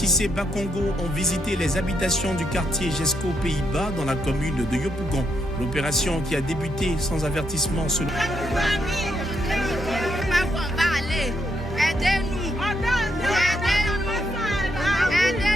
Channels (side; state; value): both; normal; correlation 0.79